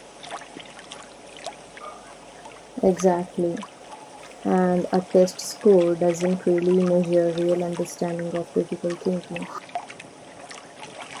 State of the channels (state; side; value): identical; both; correlation 1.00